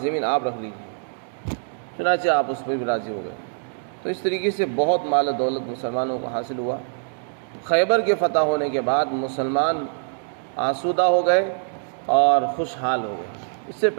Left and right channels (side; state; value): left; silent; digital silence